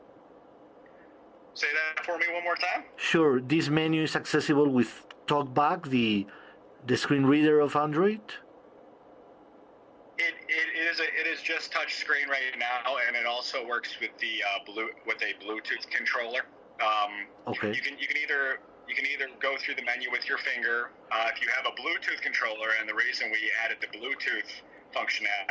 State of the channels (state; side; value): identical; both; correlation 1.00